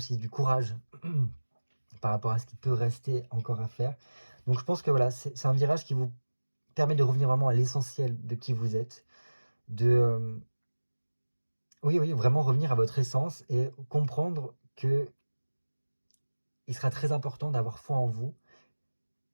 du courage par rapport à ce qui peut rester encore à faire. Donc je pense que voilà, c'est un virage qui vous permet de revenir vraiment à l'essentiel de qui vous êtes, de oui, vraiment revenir à votre essence et comprendre que il sera très important d'avoir foi en vous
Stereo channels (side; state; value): both; inverted; correlation -1.00